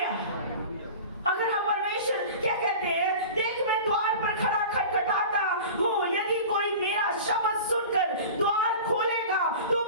अगर हम परमेश्वर क्या कहते हैं, देख मैं द्वार पर खड़ा खटखटाता हूँ, यदि कोई मेरा शब्द सुनकर द्वार खोलेगा, तो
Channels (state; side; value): inverted; both; correlation -0.36